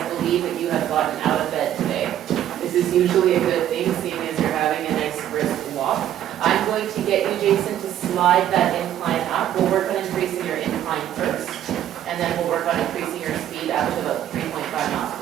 believe that you have gotten out of bed today. This is usually a good thing, seeing as you're having a nice brisk walk. I'm going to get you, Jason, to slide that incline up. We'll work on increasing your incline first, and then we'll work on increasing your speed up to about 3.5 miles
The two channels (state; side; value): quieter; left; 11.3 dB